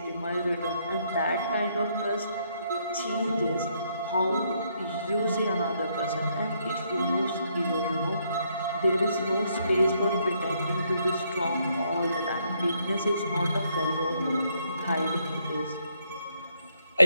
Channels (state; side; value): inverted; both; correlation -0.72